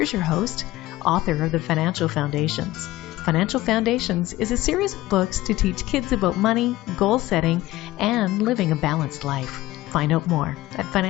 your host, author of the Financial Foundations. Financial Foundations is a series of books to teach kids about money, goal setting, and living a balanced life. Find out more at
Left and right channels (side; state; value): right; quieter; 17.0 dB